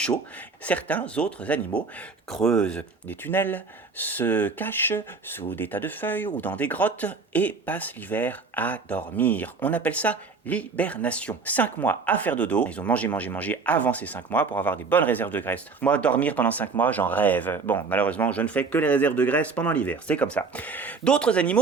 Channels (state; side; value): quieter; left; 4.5 dB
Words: Certains autres animaux creusent des tunnels, se cachent sous des tas de feuilles ou dans des grottes et passent l'hiver à dormir. On appelle ça l'hibernation. 5 mois à faire dodo. Ils ont mangé avant ces 5 mois pour avoir des bonnes réserves de graisse. Moi, dormir pendant 5 mois, j'en rêve. Bon, malheureusement, je ne fais que les réserves de graisse pendant l'hiver. C'est comme ça. D'autres